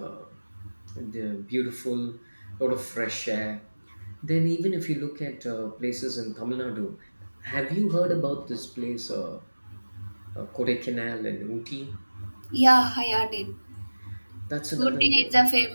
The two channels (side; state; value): both; inverted; correlation -1.00